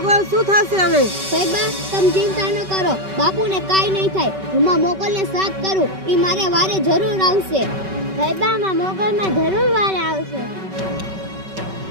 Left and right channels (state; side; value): late; left; 5.2 ms